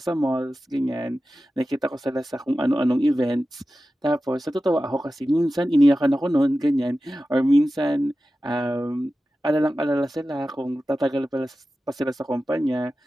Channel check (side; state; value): both; normal; correlation 0.94